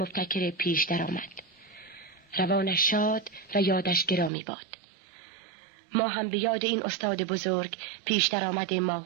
پیش درآمد. روانش شاد و یادش گرامی باد. ما هم به یاد این استاد بزرگ پیش درآمد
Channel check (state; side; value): drops out; left; at 4.3 s